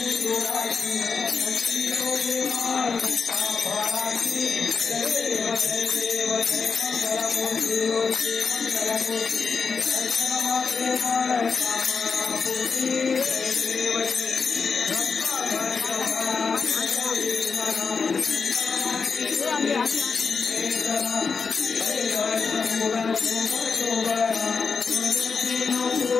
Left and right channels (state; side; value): quieter; right; 5.2 dB